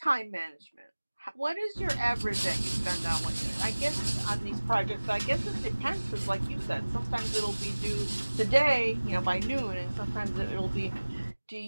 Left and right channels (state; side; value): inverted; both; correlation -1.00